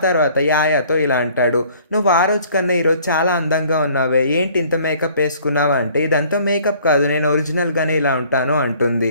తర్వాత యాయాతో ఇలా అంటాడు, నువ్వు ఆ రోజు కన్నా ఈరోజు చాలా అందంగా ఉన్నావే, ఏంటి ఇంత మేకప్ వేసుకున్నావు అంటే, ఇదంతా మేకప్ కాదు, నేను ఒరిజినల్గానే ఇలా ఉంటాను అంటుంది.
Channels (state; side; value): inverted; both; correlation -0.56